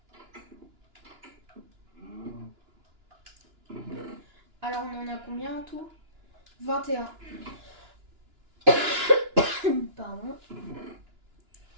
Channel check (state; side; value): late; left; 2.9 ms